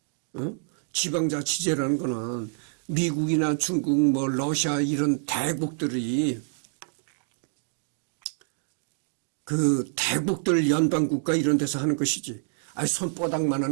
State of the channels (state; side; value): silent; left; digital silence